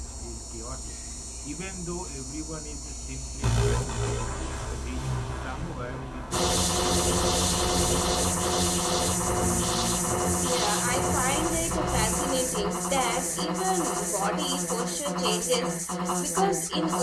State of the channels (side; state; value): both; identical; correlation 1.00